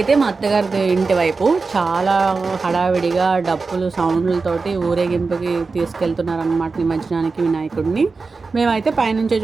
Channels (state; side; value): quieter; left; 4.3 dB